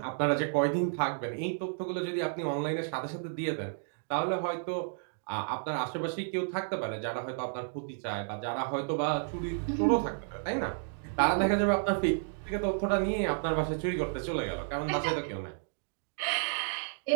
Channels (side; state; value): left; silent; digital silence